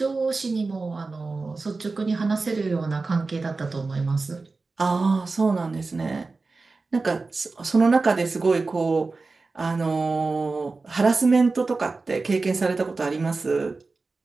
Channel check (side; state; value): left; quieter; 3.8 dB